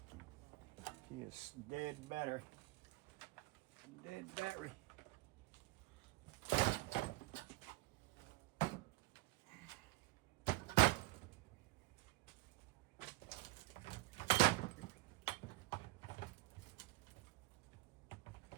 he is dead battery. Dead battery.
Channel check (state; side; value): quieter; left; 20.0 dB